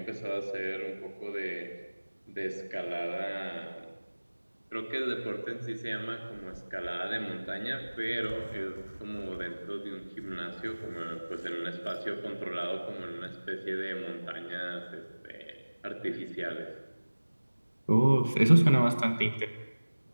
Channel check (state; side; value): inverted; both; correlation -1.00